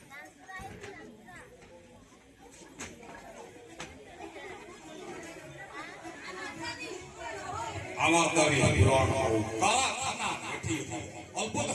আমার দাবি পূরণ করো। কারখানা এটি অল্প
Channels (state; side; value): identical; both; correlation 1.00